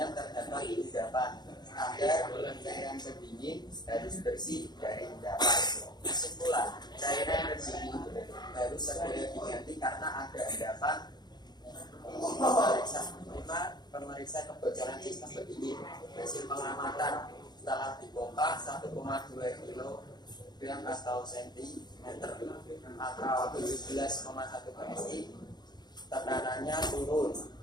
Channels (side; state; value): right; late; 0.20 ms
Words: terdapat di endapan. Agar cairan pendingin harus bersih dari endapan. Kesimpulan, cairan pendingin harus segera diganti karena ada endapan. Pemeriksa kebocoran sistem pendingin. Hasil pengamatan setelah dibongkar 1,2 kg atau sentimeter atau 17,1 PSI, tekanannya turun.